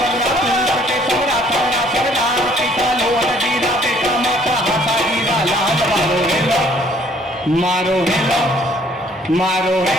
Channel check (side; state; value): both; normal; correlation 0.61